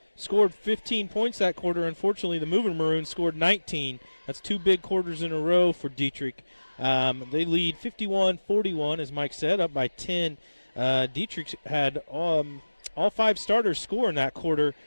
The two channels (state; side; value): inverted; both; correlation -1.00